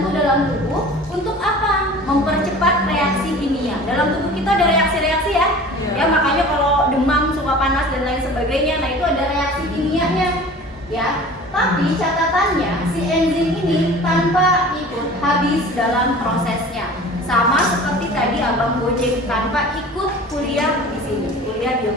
dalam tubuh untuk apa? Mempercepat reaksi kimia. Dalam tubuh kita ada reaksi-reaksi ya. Ya, makanya kalau demam, suka panas dan lain sebagainya, nah itu ada reaksi kimianya. Ya, tapi catatannya si enzim ini tanpa ikut habis dalam prosesnya. Sama seperti tadi abang Gojek tanpa ikut kuliah di sini, kuliah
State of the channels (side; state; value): both; normal; correlation 0.42